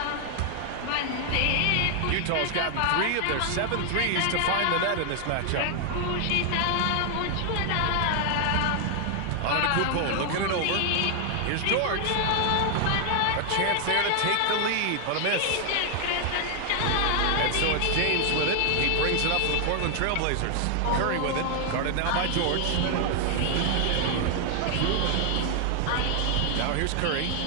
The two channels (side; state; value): both; different; correlation 0.00